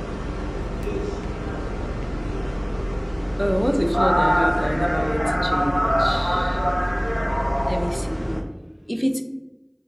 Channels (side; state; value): both; identical; correlation 1.00